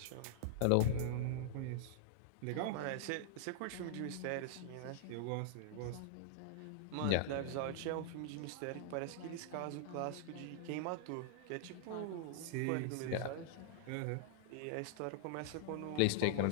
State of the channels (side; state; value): both; different; correlation -0.01